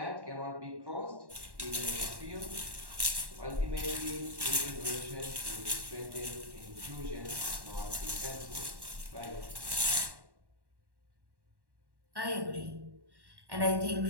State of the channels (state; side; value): late; left; 1.1 ms